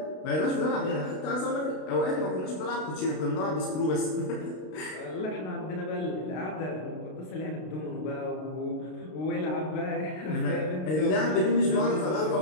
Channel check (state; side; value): late; right; 32 ms